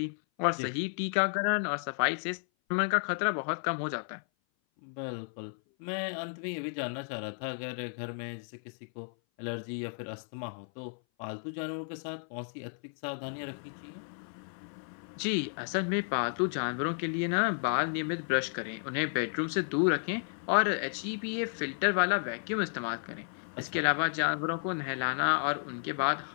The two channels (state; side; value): silent; right; 56 dB below the other